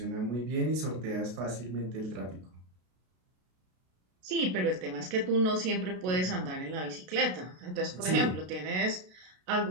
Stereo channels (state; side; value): late; left; 32 ms